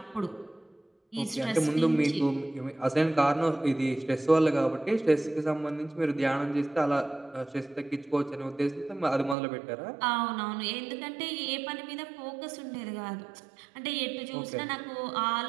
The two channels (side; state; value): left; drops out; at 9.3 s